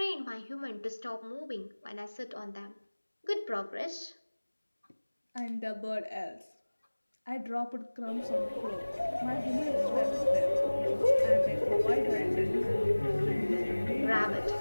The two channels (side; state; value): both; inverted; correlation -1.00